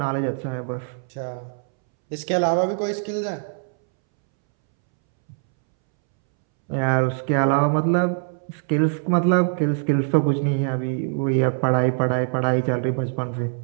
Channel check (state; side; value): silent; left; 64 dB below the other